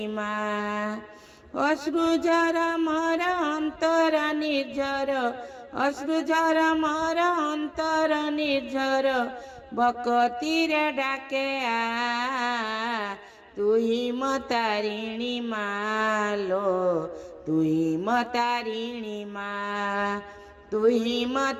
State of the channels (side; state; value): both; identical; correlation 1.00